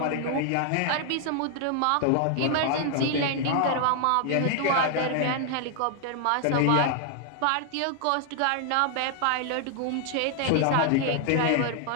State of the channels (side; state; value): both; different; correlation 0.00